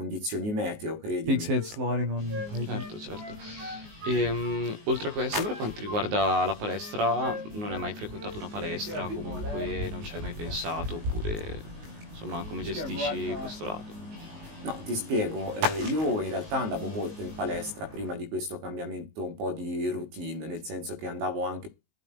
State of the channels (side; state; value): left; late; 19 ms